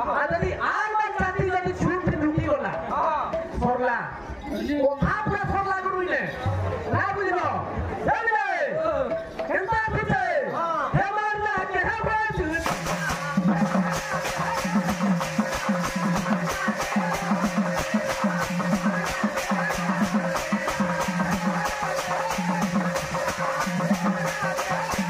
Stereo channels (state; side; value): identical; both; correlation 1.00